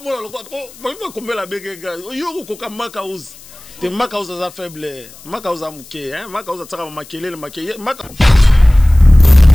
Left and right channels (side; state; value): left; noise; hiss, 21 dB below the sound